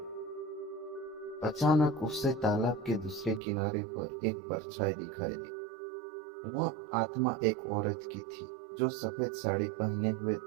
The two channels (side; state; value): left; drops out; at 3.4 s